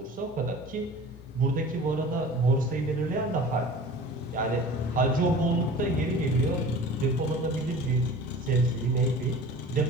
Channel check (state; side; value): normal; both; correlation 0.40